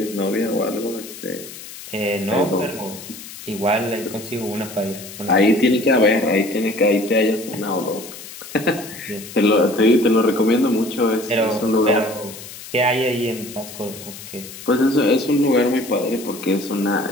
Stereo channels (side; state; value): left; noise; hiss, 14 dB below the sound